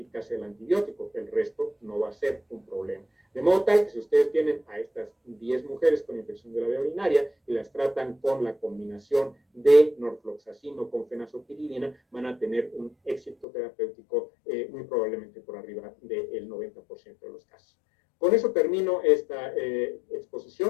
del antibiótico, el resto no va a ser un problema. De modo tal que si ustedes tienen a estas 10 mujeres con infección de la vía urinaria y las tratan con la combinación de norfloxacino con fenazopiridina, van a tener un éxito terapéutico muy probablemente por arriba del 90% de los casos. Con eso termino esta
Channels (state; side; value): drops out; right; at 13.5 s